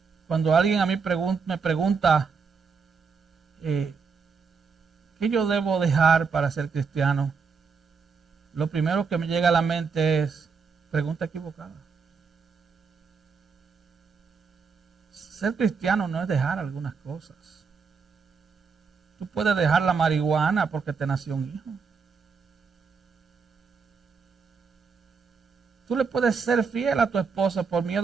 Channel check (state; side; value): quieter; left; 5.4 dB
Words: Cuando alguien a mí me pregunta ¿qué yo debo dejar para ser cristiano? Lo primero que me llega a la mente es pregunta equivocada. Ser cristiano no es dejar algunas cosas. Tú puedes dejar la marihuana porque te nació un hijo. Tú le puedes ser fiel a tu esposa por